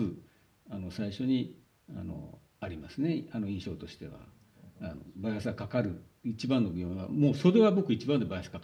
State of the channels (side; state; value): both; identical; correlation 1.00